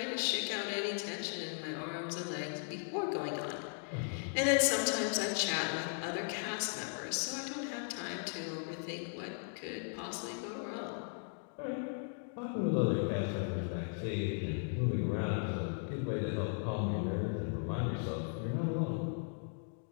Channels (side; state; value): right; silent; 53 dB below the other